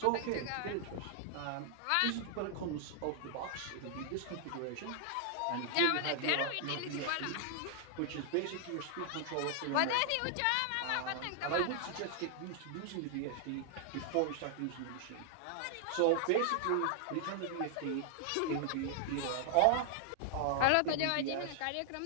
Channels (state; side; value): different; both; correlation 0.00